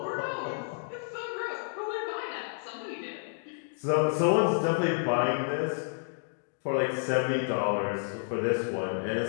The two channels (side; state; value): right; silent; digital silence